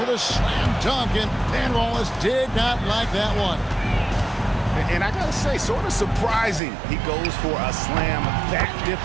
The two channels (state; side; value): drops out; left; at 6.6 s